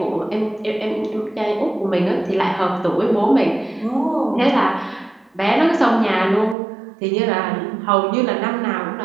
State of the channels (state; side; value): drops out; left; at 6.6 s